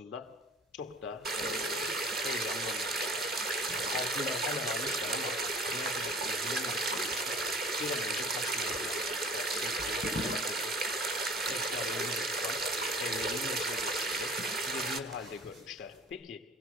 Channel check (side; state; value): both; normal; correlation 0.46